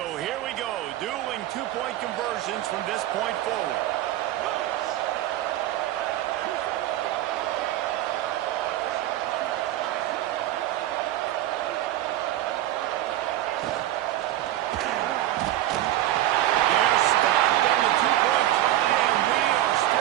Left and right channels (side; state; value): left; quieter; 13.9 dB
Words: here we go, dueling 2-point conversions from this point forward. They're stopped on the 2-point try, and we are